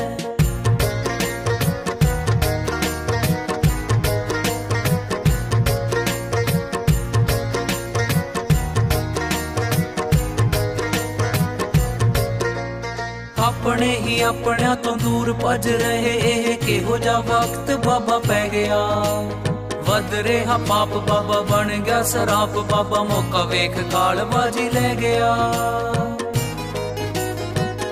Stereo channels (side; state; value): both; identical; correlation 1.00